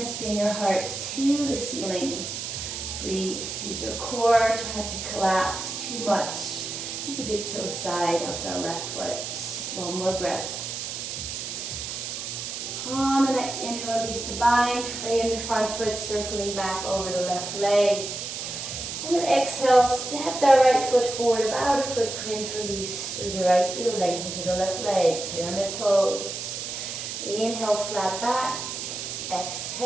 spin your heart to the ceiling. Breathe, use your core, try not to collapse too much. Keep the big toe side of the left foot. One more breath. On the next inhale, release the bind, frame the front foot, circling back over the left leg. And then exhale, step that right foot forward, about a footprint, release through the right heel, lengthen through the left leg, pyramid pose. Inhale, flat back.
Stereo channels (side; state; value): right; noise; hiss, 6 dB below the sound